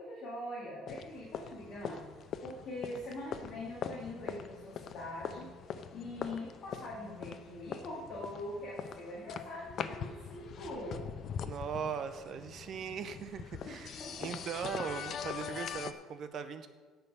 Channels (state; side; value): normal; both; correlation 0.58